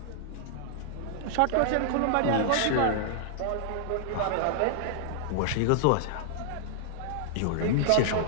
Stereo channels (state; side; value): different; both; correlation -0.01